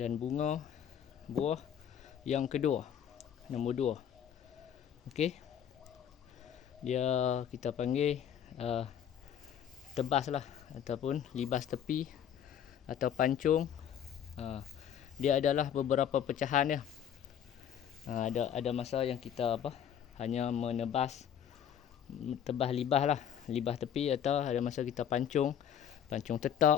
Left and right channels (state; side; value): quieter; right; 9.1 dB